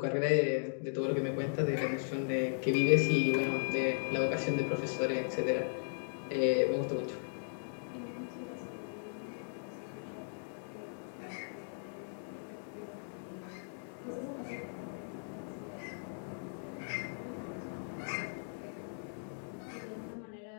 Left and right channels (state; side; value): silent; right; digital silence